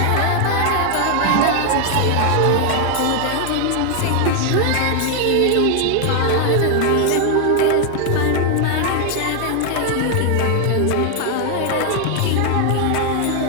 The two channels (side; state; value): both; different; correlation 0.00